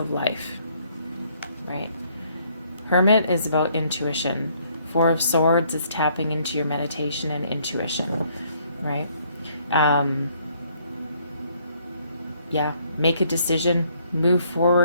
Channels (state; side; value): inverted; both; correlation -0.66